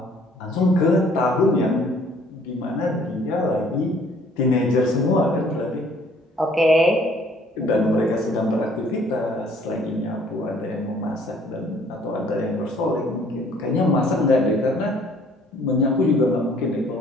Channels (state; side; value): normal; both; correlation 0.59